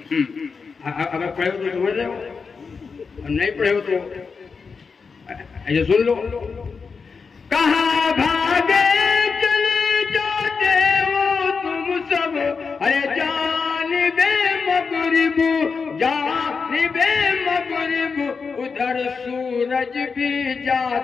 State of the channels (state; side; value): quieter; right; 5.1 dB